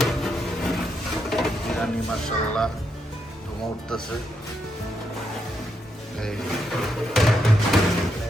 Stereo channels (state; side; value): normal; both; correlation 0.80